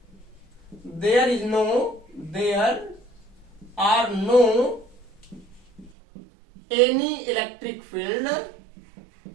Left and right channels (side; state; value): left; drops out; at 5.9 s